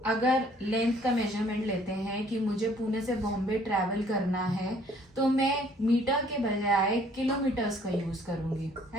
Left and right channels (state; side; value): normal; both; correlation 0.60